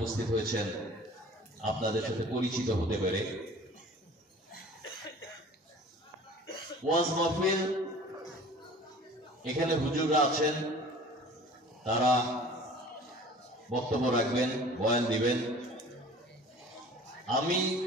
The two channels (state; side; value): normal; both; correlation 0.45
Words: হয়েছেন আপনাদের সাথে পরিচিত হতে পেরে। ওয়াজ মাহফিল, এখানে হুজুররা আছেন, তারা বক্তব্য রাখবেন, বয়ান দিবেন। আমি